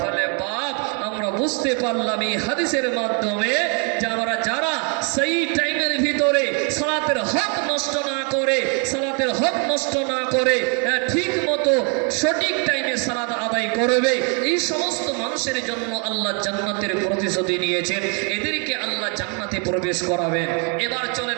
বাপ, আমরা বুঝতে পারলাম এই হাদিসের মাধ্যমে যে আমরা যারা সেই টাইমের ভিতরে সালাতের হক নষ্ট না করে ঠিক মতো সঠিক টাইমে সালাত আদায় করবে, এই সমস্ত মানুষের জন্য আল্লাহ জান্নাতের প্রতিশ্রুতি নিয়েছেন। এদেরকে আল্লাহ জান্নাতে প্রবেশ করাবেন। এবার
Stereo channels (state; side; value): quieter; left; 36.9 dB